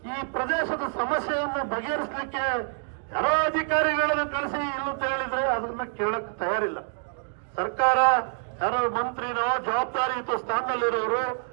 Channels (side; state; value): left; silent; 60 dB below the other